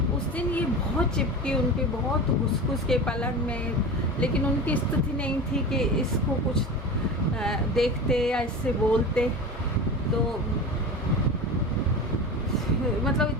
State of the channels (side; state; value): both; normal; correlation 0.29